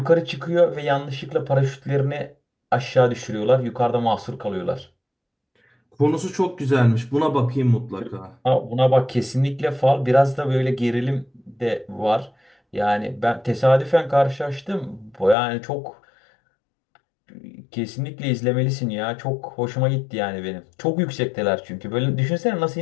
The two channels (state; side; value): drops out; right; at 15.4 s